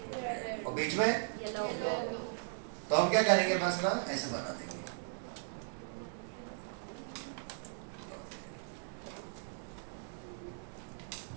और बीच में तो हम क्या करेंगे, बस ना ऐसे बना देंगे।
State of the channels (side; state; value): left; silent; 53 dB below the other